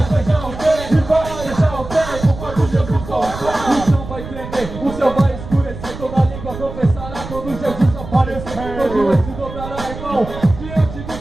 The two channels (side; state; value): right; noise; rumble, 11 dB below the sound